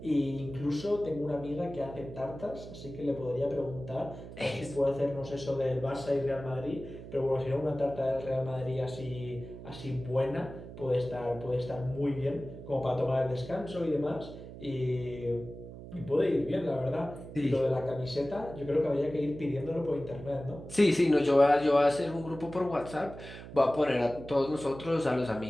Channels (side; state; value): right; noise; hum, 13 dB below the sound